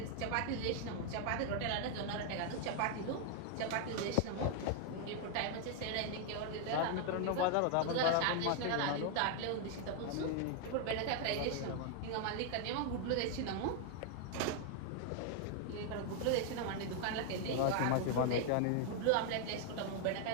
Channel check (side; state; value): both; different; correlation 0.00